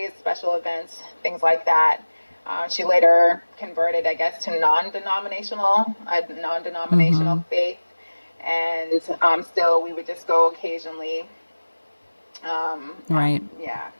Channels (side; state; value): both; inverted; correlation -1.00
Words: special events, things like that. She later converted, I guess, to non-denominational faith. And still, we would just go occasionally. Right. Yeah.